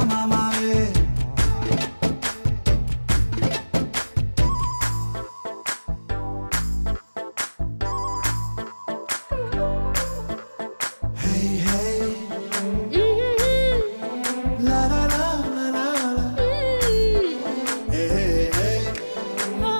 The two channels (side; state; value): both; inverted; correlation -1.00